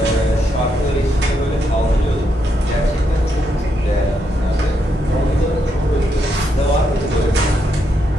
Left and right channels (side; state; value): both; normal; correlation 0.79